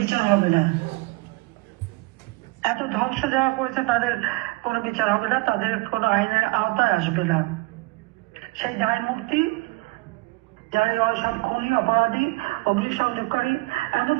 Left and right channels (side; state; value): left; quieter; 23.6 dB